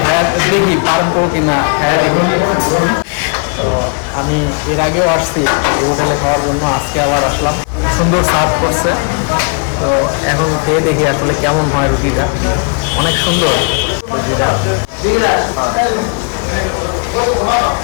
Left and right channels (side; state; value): right; quieter; 38.3 dB